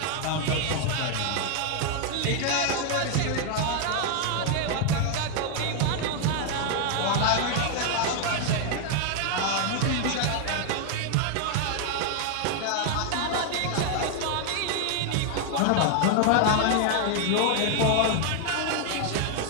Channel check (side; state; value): both; different; correlation 0.00